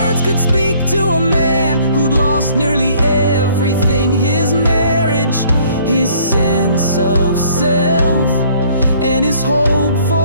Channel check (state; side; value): inverted; both; correlation -0.59